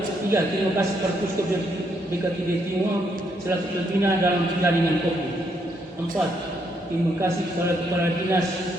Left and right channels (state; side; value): normal; both; correlation 0.74